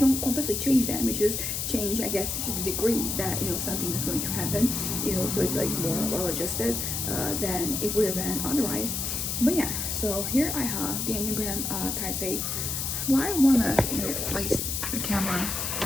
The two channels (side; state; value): left; noise; hiss, 2 dB below the sound